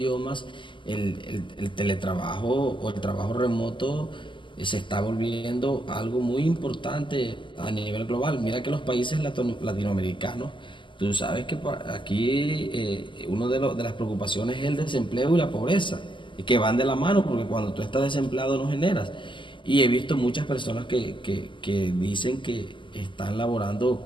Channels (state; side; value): late; right; 0.24 ms